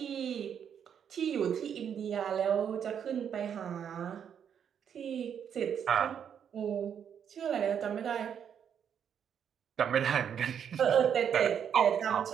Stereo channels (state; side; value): quieter; left; 8.2 dB